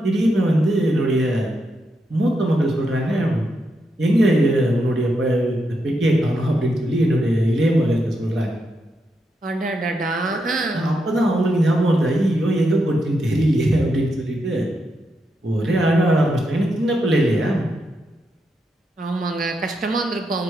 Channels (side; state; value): both; normal; correlation 0.83